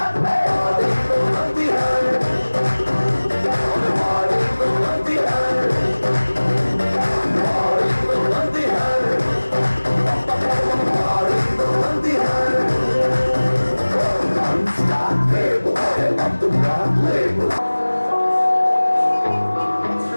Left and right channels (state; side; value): inverted; both; correlation -1.00